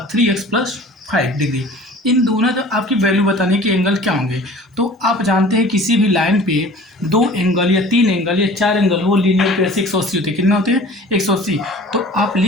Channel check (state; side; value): normal; both; correlation 0.45